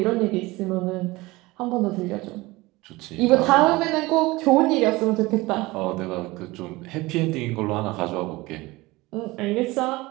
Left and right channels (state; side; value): quieter; left; 21.1 dB